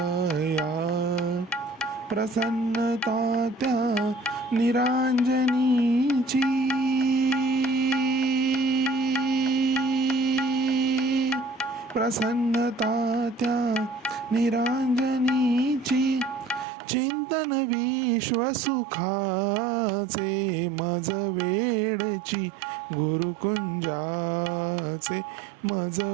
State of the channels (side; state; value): left; drops out; at 16.7 s